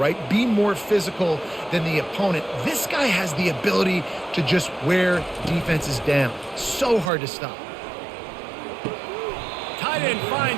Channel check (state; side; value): drops out; left; at 7.1 s